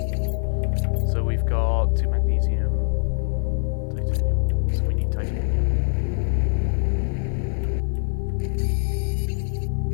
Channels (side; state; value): right; silent; 63 dB below the other